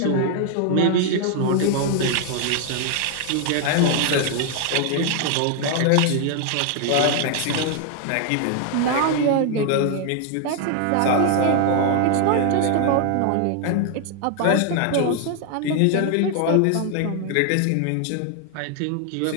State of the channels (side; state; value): both; different; correlation 0.00